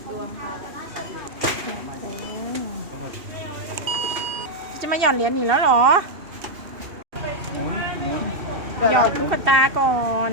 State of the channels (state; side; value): late; left; 2.7 ms